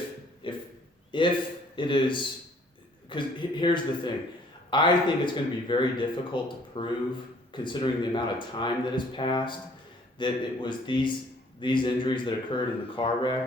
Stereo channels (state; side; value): normal; both; correlation 0.58